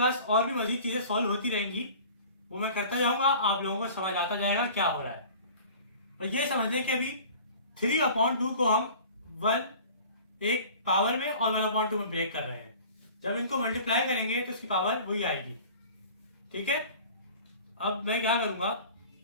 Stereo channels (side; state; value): both; inverted; correlation -0.44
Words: पास और भी मजीद चीजें सॉल्व होती रहेंगी, वो मैं करता जाऊंगा, आप लोगों को समझ आता जाएगा क्या हो रहा है। और ये समझने के अभी 3/2 को हम 1 एक पावर में और 1/2 में ब्रेक कर रहे हैं। जब इनको मल्टीप्लाई करेंगे तो इसकी पावर वही आएगी, ठीक है। अब मैं क्या करूंगा,